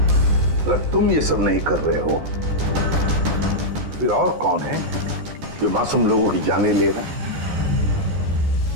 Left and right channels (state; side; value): late; left; 14 ms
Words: अगर तुम ये सब नहीं कर रहे हो फिर और कौन है जो मासूम लोगों की जानें ले रहा है?